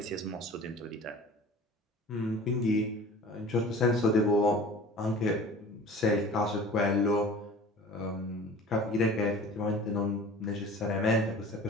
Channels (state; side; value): normal; both; correlation 0.42